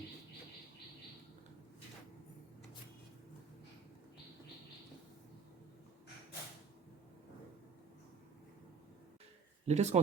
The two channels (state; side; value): quieter; left; 5.6 dB